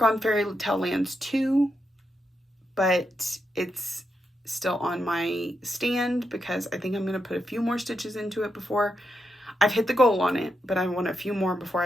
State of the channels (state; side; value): normal; both; correlation 0.84